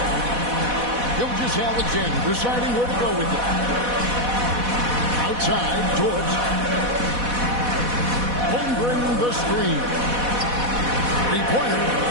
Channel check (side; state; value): left; late; 4.1 ms